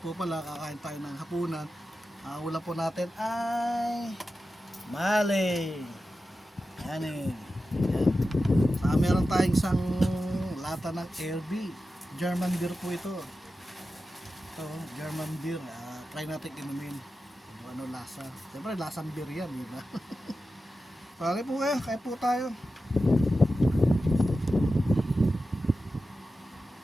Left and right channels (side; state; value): both; normal; correlation 0.92